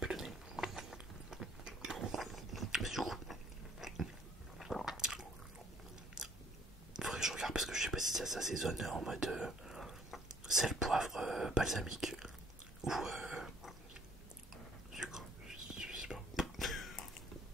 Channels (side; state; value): both; normal; correlation 0.59